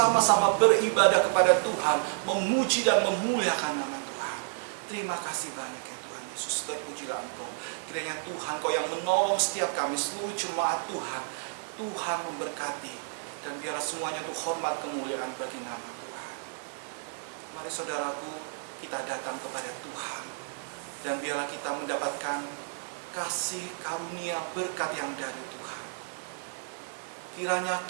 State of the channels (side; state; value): left; silent; digital silence